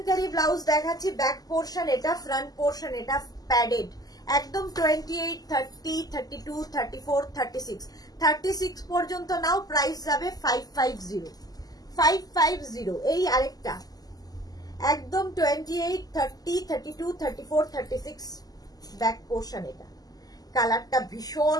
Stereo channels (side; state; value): right; late; 0.18 ms